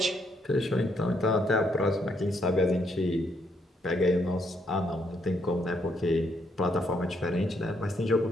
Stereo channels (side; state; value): both; normal; correlation 0.73